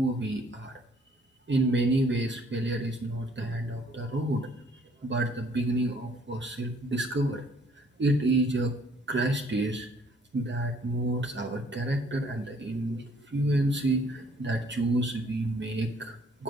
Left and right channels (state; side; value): normal; both; correlation 0.61